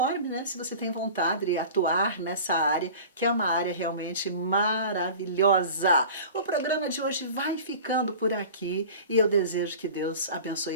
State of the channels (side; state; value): both; inverted; correlation -0.39